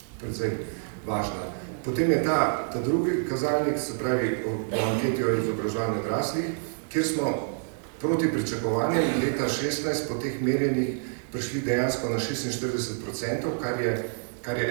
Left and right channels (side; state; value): left; silent; 60 dB below the other